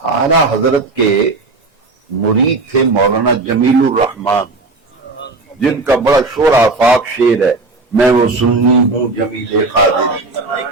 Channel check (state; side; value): quieter; left; 3.4 dB